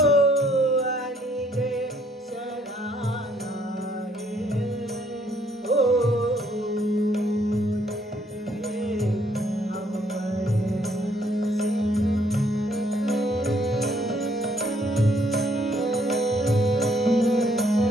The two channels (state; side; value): normal; both; correlation 0.66